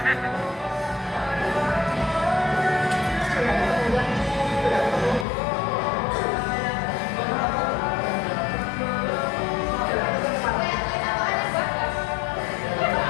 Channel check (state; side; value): drops out; right; at 5.2 s